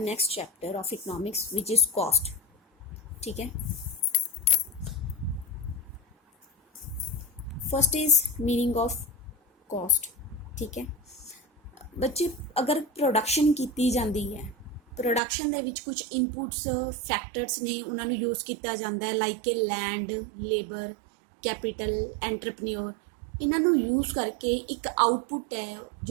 chapter of economics, which is cost. ठीक है. First is meaning of cost. ठीक है. बच्चे अगर production कीती जाती है, प्रोडक्शन ਦੇ ਵਿੱਚ ਕੁਝ ਇਨਪੁਟਸ ਫੈਕਟਰਸ ਨੇ, ਉਹਨਾਂ ਨੂੰ ਯੂਜ਼ ਕੀਤਾ ਜਾਂਦਾ ਹੈ, ਲਾਈਕ ਕਿ ਲੈਂਡ, ਲੇਬਰ, ਕੈਪੀਟਲ, ਐਂਟਰਪ੍ਰੀਨਿਓਰ. ਇਹਨਾਂ ਨੂੰ ਯੂਜ਼ ਕਰਕੇ ਇੱਕ ਆਊਟਪੁੱਟ ਹੈ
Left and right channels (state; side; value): drops out; left; at 15.2 s